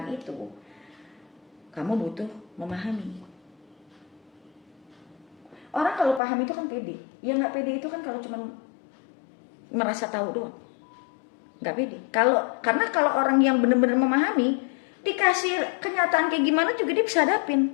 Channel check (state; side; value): drops out; right; at 6.2 s